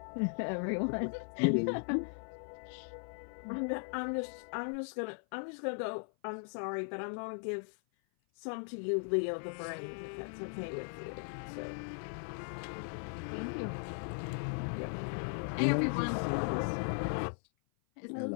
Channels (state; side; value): silent; right; 53 dB below the other